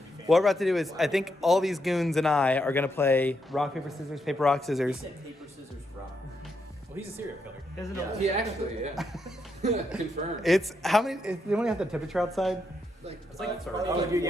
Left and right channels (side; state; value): both; normal; correlation 0.80